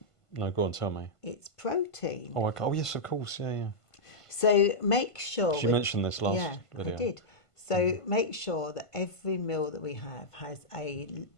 go on, tell me. It's protein. Oh, okay. Oh, yes, of course, yeah. So make sure... She mentioned this last video. I did. So make sure that every meal that we have has a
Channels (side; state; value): right; late; 1.5 ms